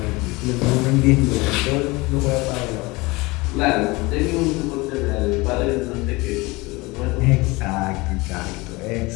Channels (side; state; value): right; quieter; 23.4 dB